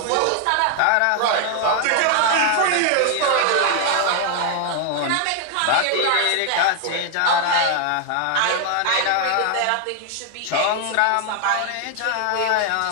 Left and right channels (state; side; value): different; both; correlation 0.00